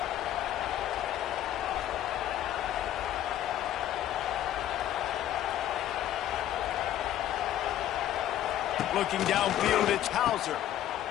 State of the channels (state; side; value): quieter; right; 12.1 dB